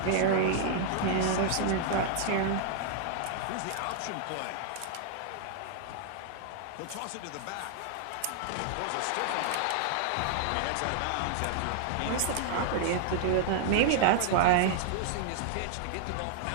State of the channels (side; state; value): both; different; correlation 0.00